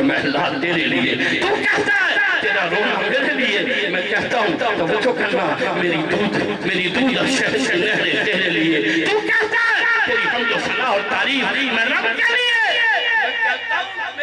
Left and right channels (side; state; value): both; identical; correlation 1.00